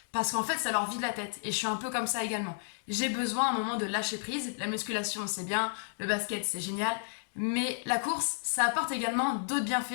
Parce qu'en fait, ça leur vide la tête. Et je suis un peu comme ça également. J'ai besoin à un moment de lâcher prise. La musculation, c'est bien. Le basket, c'est génial. Mais la course, ça apporte également d'autres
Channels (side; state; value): right; silent; digital silence